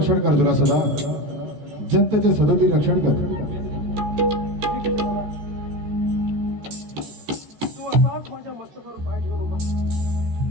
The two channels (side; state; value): left; late; 14 ms